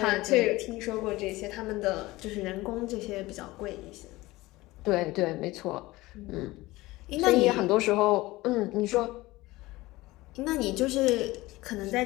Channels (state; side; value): quieter; right; 19.5 dB